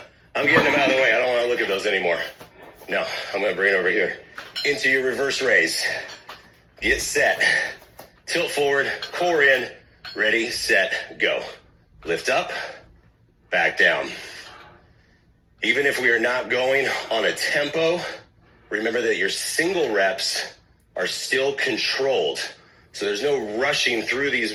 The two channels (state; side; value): identical; both; correlation 1.00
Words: I'm getting them out of the way. I don't want to look at those anymore. No, I'm going to bring it over here. Into your reverse raise. Get set. Tilt forward, core in. Ready, set, go. Lift up, back down. Even if we are not going on a tempo, remember that your single reps are still controlled. So there's no rushing through these